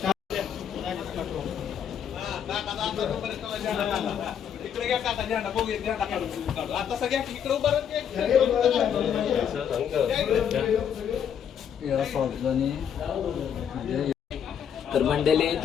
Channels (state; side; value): quieter; right; 8.4 dB